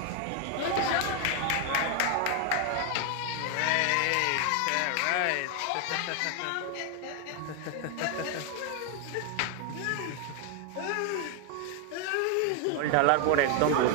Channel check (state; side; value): different; both; correlation 0.01